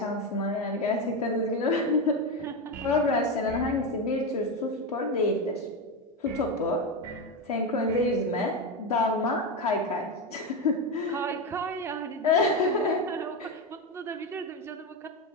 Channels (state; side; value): normal; both; correlation 0.13